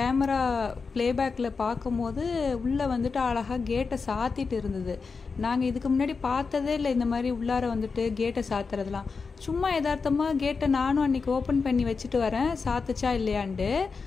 ப்ளேபேக்கில் பார்க்கும்போது உள்ளே வந்துட்டு அழகாக கேட்டை சாத்திட்டு இருந்தது. நாங்கள் இதுக்கு முன்னாடி பார்த்ததே இல்லை இந்த மாதிரி உள்ளார வந்துட்டு கேட்டை சாத்துறதுலாம். சும்மா யதார்த்தமாக கேட்டை நானும் அன்றைக்கி ஓப்பன் பண்ணி வச்சுட்டு வரேன், சாத்துச்சா இல்லையான்ட்டு.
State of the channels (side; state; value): right; quieter; 4.8 dB